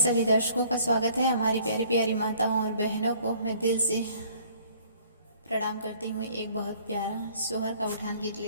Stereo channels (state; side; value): inverted; both; correlation -0.57